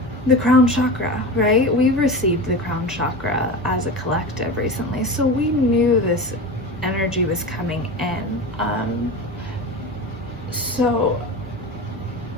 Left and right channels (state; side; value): normal; both; correlation 0.28